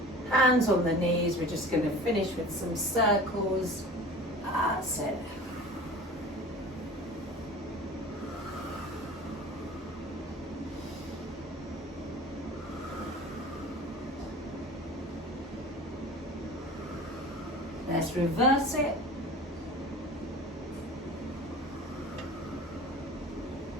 Hands on the knees. We're just going to finish with some circles. That's it. Let's reverse it.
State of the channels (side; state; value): both; normal; correlation 0.39